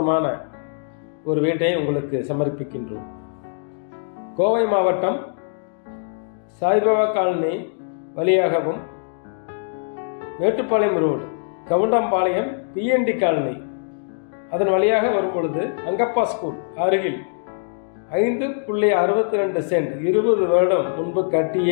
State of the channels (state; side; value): silent; right; digital silence